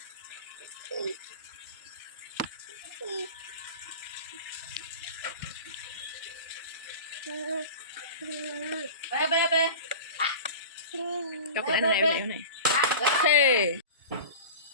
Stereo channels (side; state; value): both; inverted; correlation -0.34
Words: Coklat này bên này. Thế.